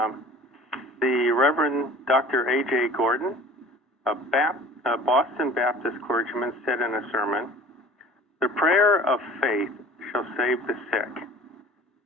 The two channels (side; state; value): both; normal; correlation 0.45